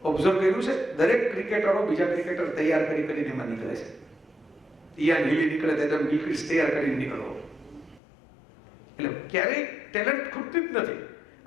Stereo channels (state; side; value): drops out; right; at 8.0 s